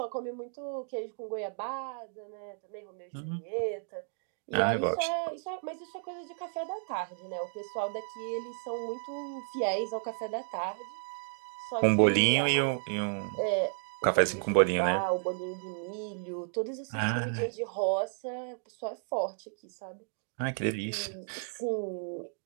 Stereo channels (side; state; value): left; silent; digital silence